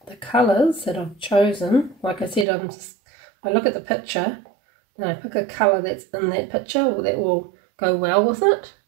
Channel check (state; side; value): drops out; left; at 2.5 s